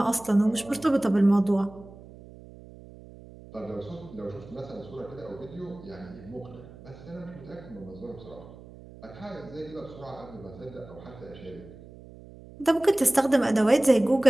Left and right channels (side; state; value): right; noise; hum, 19 dB below the sound